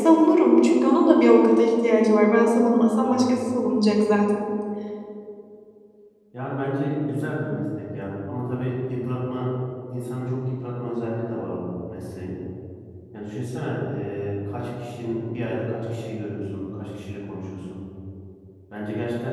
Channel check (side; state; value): both; identical; correlation 1.00